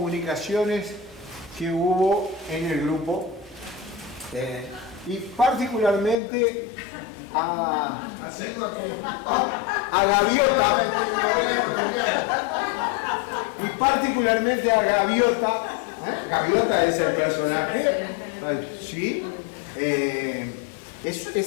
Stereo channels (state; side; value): drops out; right; at 6.2 s